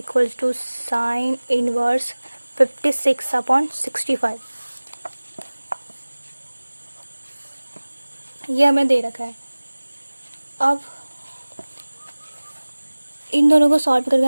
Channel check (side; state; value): both; inverted; correlation -1.00